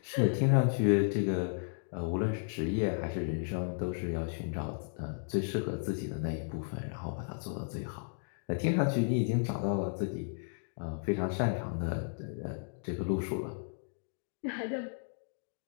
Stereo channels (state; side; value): silent; right; digital silence